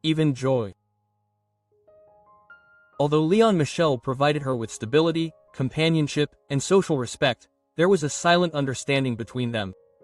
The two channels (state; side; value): identical; both; correlation 1.00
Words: even joy. Although Leon Michel provided her with stability, companionship, and social respect, there was a silent understanding between them.